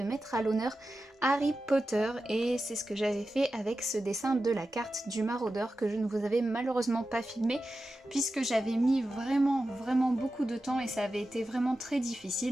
mettre à l'honneur Harry Potter et c'est ce que j'avais fait avec ce dessin de la carte du maraudeur que je ne vous avais malheureusement pas filmé puisque j'avais mis vraiment beaucoup de temps et ça avait été vraiment très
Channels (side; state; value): both; normal; correlation 0.92